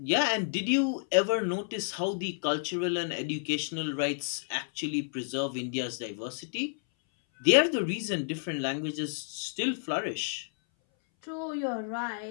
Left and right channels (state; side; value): silent; right; 57 dB below the other